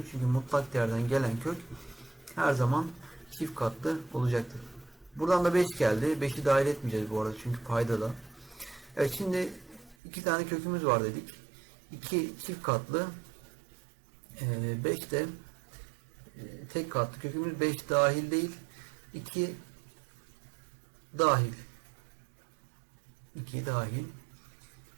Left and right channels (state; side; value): drops out; left; at 10.0 s